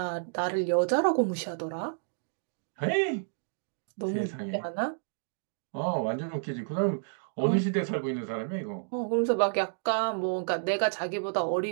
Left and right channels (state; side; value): silent; left; digital silence